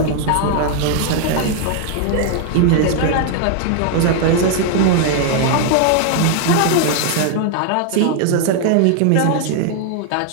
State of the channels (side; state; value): both; different; correlation 0.00